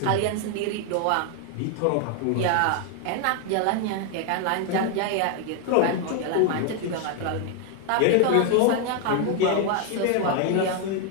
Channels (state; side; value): different; both; correlation 0.00